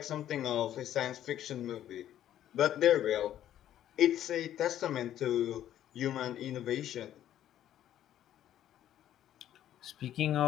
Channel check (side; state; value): right; quieter; 11.6 dB